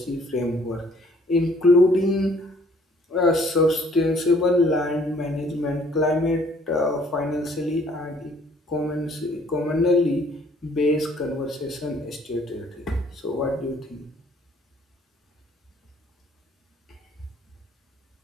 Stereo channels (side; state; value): both; normal; correlation 0.60